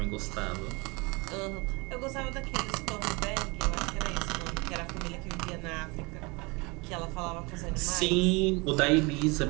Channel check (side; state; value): left; quieter; 27.1 dB